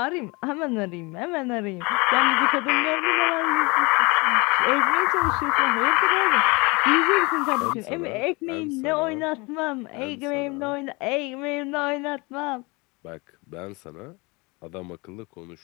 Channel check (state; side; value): quieter; right; 26.6 dB